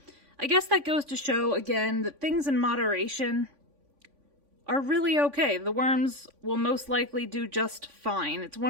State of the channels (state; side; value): late; left; 3.5 ms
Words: I guess that goes to show, again, that things in moderation are really okay. The worms will most likely do just fine. It's